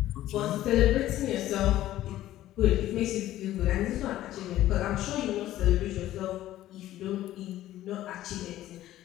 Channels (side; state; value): right; quieter; 14.1 dB